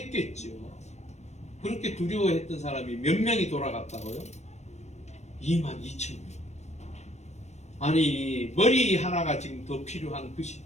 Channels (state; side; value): late; right; 0.32 ms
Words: 그렇게 두려워했던 사람이 몇 명이 돌아갔다고요? 2만 2천 명. 아니 머리 하나가 지금 더 필요한 그